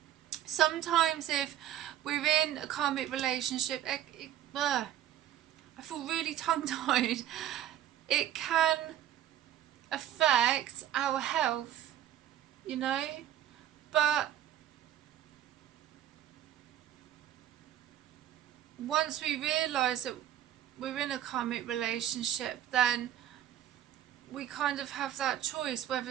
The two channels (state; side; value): quieter; left; 11.6 dB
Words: Sometimes if we're in a karmic relationship, I feel really tongue-tied. It can affect our health, you know, but once we realise that we're in a karmic relationship, then we kind of have that choice whether